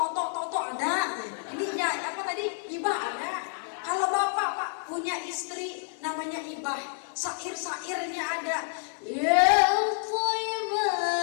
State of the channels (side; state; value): right; silent; 59 dB below the other